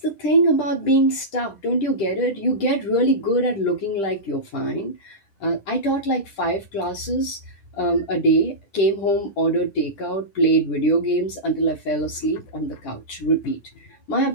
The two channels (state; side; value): late; right; 10 ms